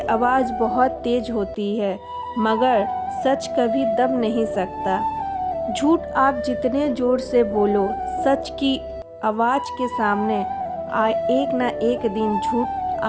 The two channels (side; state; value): both; identical; correlation 1.00